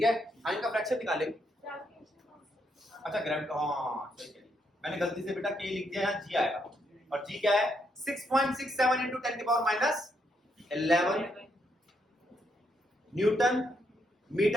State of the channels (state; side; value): normal; both; correlation 0.77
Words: है, हाँ इनका फ्रैक्शन निकालेंगे। अच्छा ग्रेविटी, हाँ सही है, मैंने गलती से बेटा के लिख दिया, यहाँ जी आएगा। और जी क्या है? 6.67 into 10 की power minus 11 newton